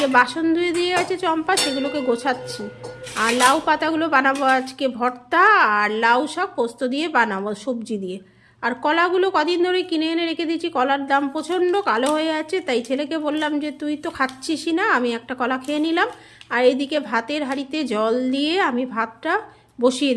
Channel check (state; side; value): identical; both; correlation 1.00